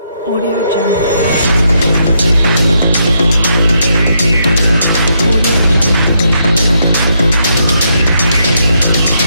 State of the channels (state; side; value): inverted; both; correlation -0.77